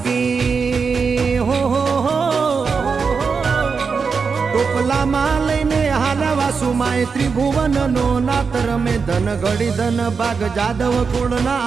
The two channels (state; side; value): quieter; left; 5.3 dB